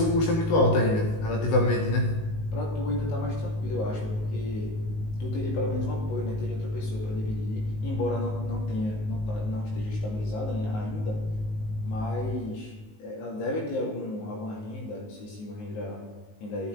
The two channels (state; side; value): late; right; 19 ms